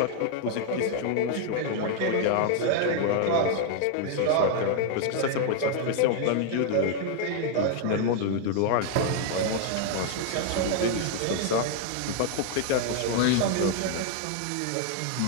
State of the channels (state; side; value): different; both; correlation 0.00